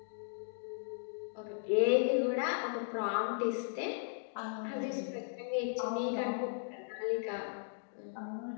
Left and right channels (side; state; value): right; silent; digital silence